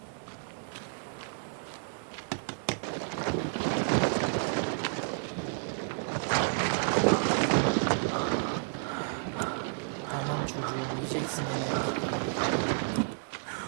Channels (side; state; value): left; silent; digital silence